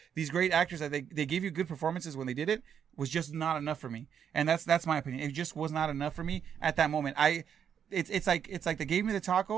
these great actors that they gave you good performances when they did it. Was just not enough for me. And that's my opinion. It just was not enough for me at that moment. It's like they gave me the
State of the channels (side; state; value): left; quieter; 8.2 dB